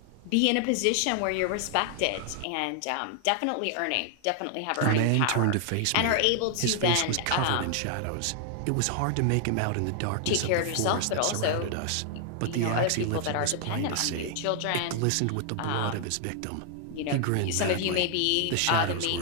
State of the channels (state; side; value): different; both; correlation 0.00